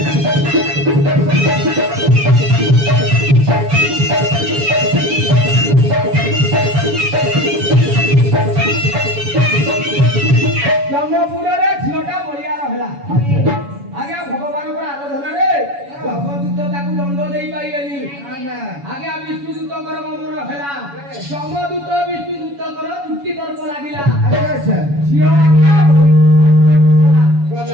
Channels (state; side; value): late; left; 7.1 ms